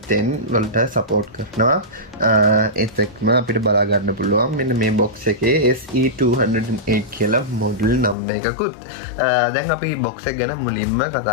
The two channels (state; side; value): drops out; right; at 8.2 s